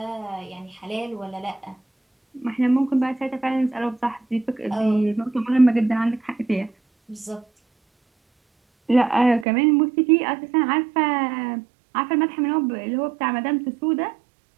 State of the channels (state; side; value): drops out; left; at 9.5 s